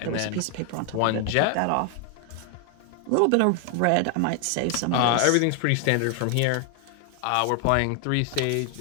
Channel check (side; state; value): both; different; correlation 0.00